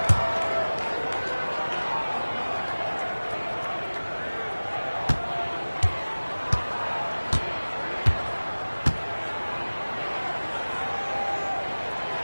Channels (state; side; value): inverted; both; correlation -1.00